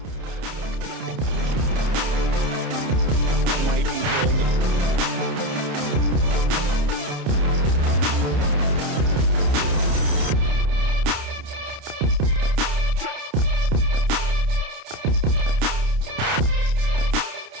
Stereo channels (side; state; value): left; late; 29 ms